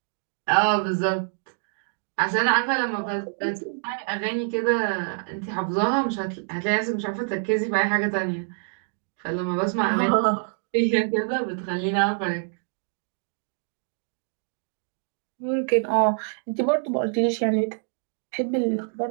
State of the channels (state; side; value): silent; left; digital silence